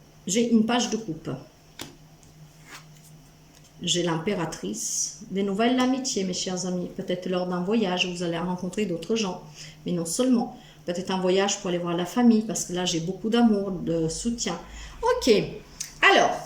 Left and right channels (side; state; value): both; identical; correlation 1.00